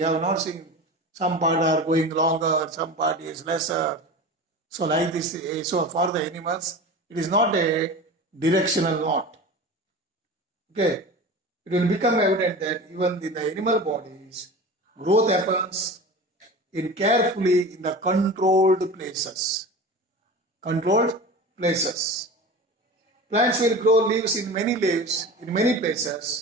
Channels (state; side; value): normal; both; correlation 0.33